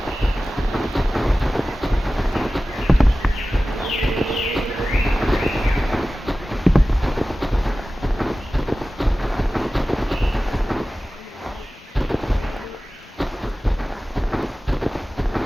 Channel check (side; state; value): both; normal; correlation 0.96